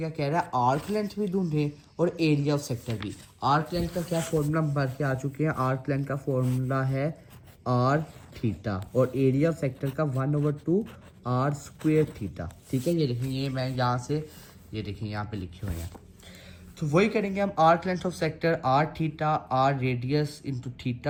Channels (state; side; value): identical; both; correlation 1.00